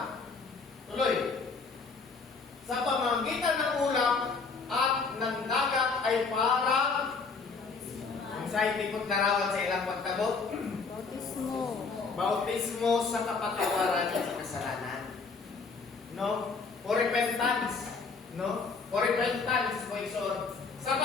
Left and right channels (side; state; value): right; quieter; 4.7 dB